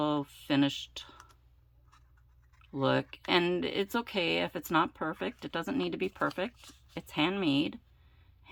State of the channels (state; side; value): identical; both; correlation 1.00